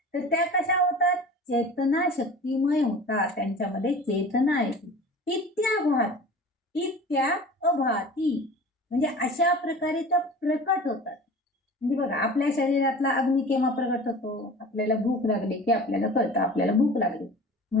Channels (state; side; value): normal; both; correlation 0.39